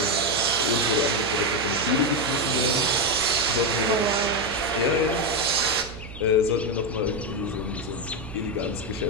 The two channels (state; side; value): noise; right; hum, 14 dB below the sound